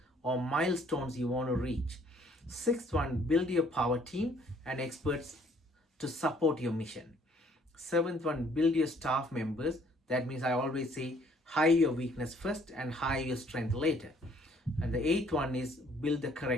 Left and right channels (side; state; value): both; normal; correlation 0.62